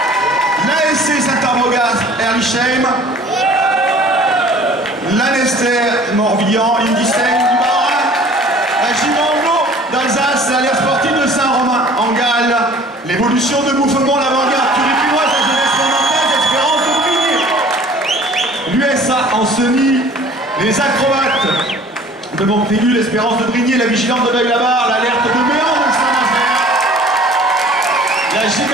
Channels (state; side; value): normal; both; correlation 0.49